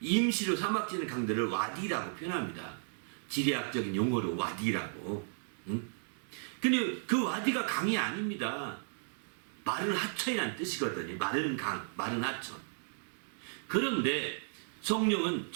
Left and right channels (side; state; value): left; silent; digital silence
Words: 임시로 사막지대 강들을 와디라고 표현합니다. 지리학적인 용어로 와디라고. 근데 그 와디가 강이 아닙니다. 마른 하천이라는 뜻이거든요. 마른 강, 마른 하천. 그런데 성령은